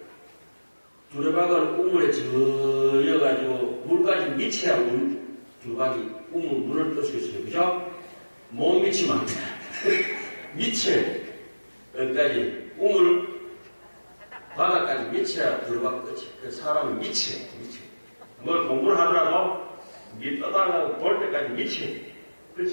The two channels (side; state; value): both; inverted; correlation -1.00